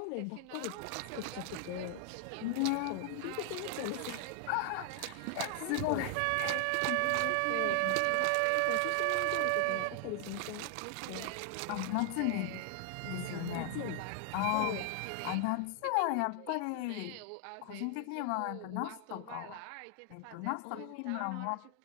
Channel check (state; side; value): different; both; correlation 0.00